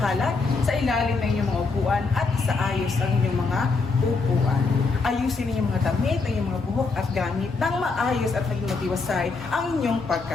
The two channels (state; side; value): quieter; right; 4.1 dB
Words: sa ilalim ng inyong mga upuan at sa ayos ang inyong mga upuan. Ayusin ninyong mga damit, ang inyong mga buhok at gamit nang maayos at maging matiwasay ang inyong